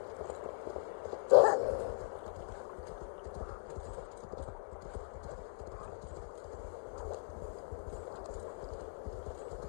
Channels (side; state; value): right; silent; digital silence